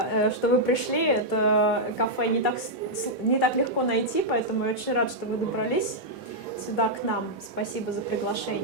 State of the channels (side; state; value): both; normal; correlation -0.06